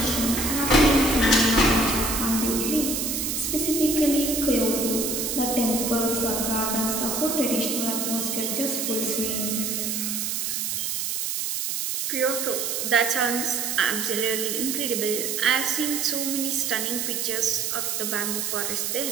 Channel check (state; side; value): noise; right; hiss, 1 dB below the sound